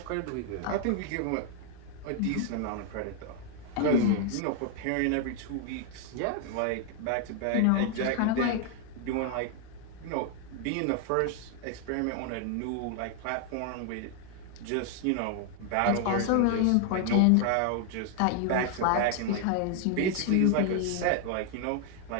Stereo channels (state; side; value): different; both; correlation 0.00